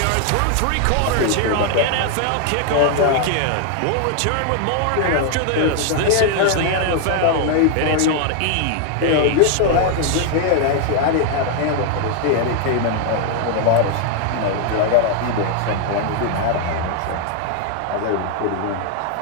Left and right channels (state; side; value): different; both; correlation 0.00